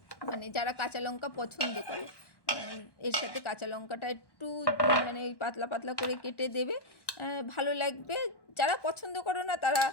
মানে যারা কাঁচা লঙ্কা পছন্দ করে এর সাথে কাঁচা লঙ্কাটা একটু মানে পাতলা পাতলা করে কেটে দেবে, ভালো লাগবে। যারা পছন্দ করো না তারা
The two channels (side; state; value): right; late; 1.1 ms